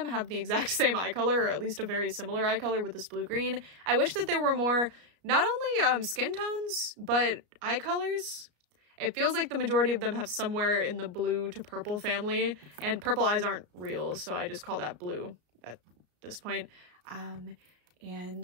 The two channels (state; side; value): late; left; 33 ms